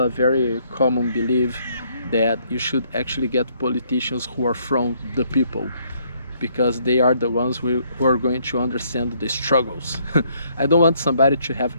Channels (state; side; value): inverted; both; correlation -0.68